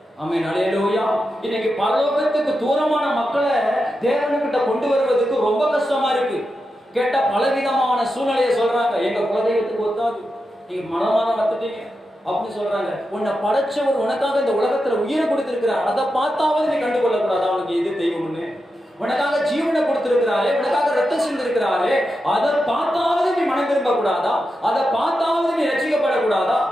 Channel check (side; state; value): both; normal; correlation 0.89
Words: ஆமென், அல்லேலூயா. இன்னைக்கு பரலோகத்துக்கு தூரமான மக்களை தேவனுக்கிட்ட கொண்டு வருவதற்கு ரொம்ப கஷ்டமா இருக்கு. கேட்டா பலவிதமான சூழ்நிலையை சொல்றாங்க. எங்க குலதெய்வத்துக்கு ஒத்தாது, நீங்க மனமான வந்துட்டீங்க அப்படின்னு சொல்றாங்க. உன்னை படைச்சவர் உனக்காக இந்த உலகத்துல உயிரை கொடுத்திருக்கிறார், அதை பார்த்தாவது நீ கண்டுகொள்ள கூடாது அவனுக்கு எது தெய்வம்னு. உனக்காக ஜீவனை கொடுத்திருக்கிறாரே, உனக்காக ரத்தம் சிந்திருக்கிறாரே, அதை பார்த்தாவது நீ மனம் திரும்ப கூடாதா? அதை பார்த்தாவது நீ ரட்சிக்கப்படக்கூடாதா?